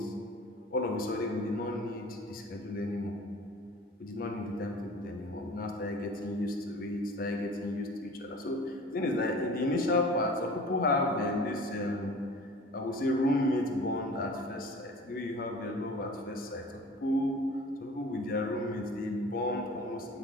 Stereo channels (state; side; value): normal; both; correlation 0.42